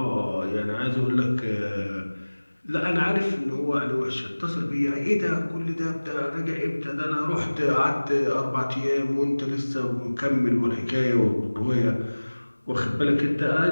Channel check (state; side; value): inverted; both; correlation -1.00